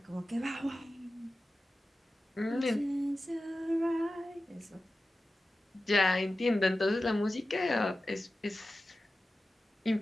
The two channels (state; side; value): normal; both; correlation 0.94